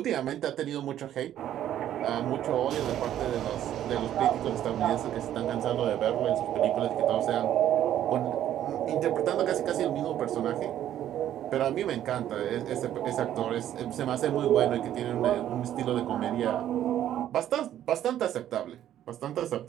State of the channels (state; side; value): quieter; left; 11.5 dB